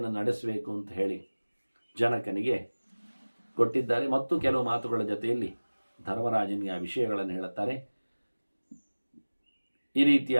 ನಡೆಸಬೇಕು ಅಂತ ಹೇಳಿ ಜನಕನಿಗೆ ಕೊಟ್ಟಿದ್ದಾರೆ. ಮತ್ತು ಕೆಲವು ಮಾತುಗಳ ಜೊತೆಯಲ್ಲಿ ಧರ್ಮರಾಜನಿಗೆ ಆ ವಿಷಯಗಳನ್ನು ಹೇಳುತ್ತಾರೆ. ಈ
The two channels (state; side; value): inverted; both; correlation -1.00